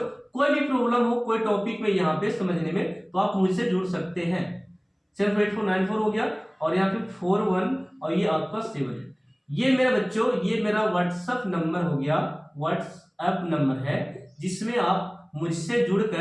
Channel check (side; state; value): both; identical; correlation 1.00